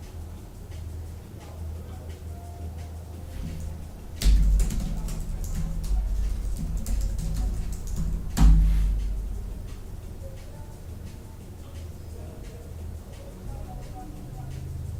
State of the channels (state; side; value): identical; both; correlation 1.00